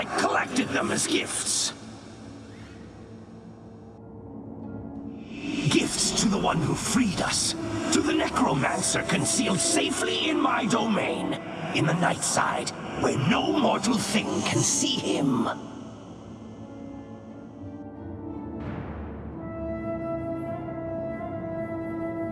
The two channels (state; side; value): identical; both; correlation 1.00